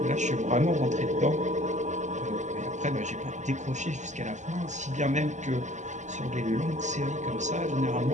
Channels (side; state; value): left; late; 0.34 ms